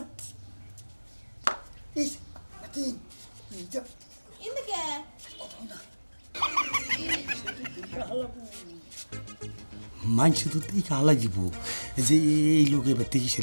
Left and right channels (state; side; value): inverted; both; correlation -1.00